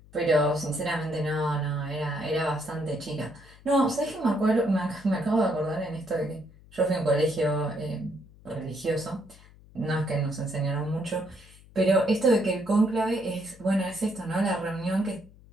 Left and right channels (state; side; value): noise; left; hum, 24 dB below the sound